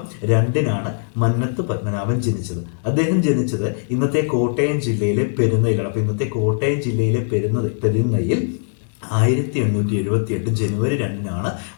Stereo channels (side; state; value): right; silent; digital silence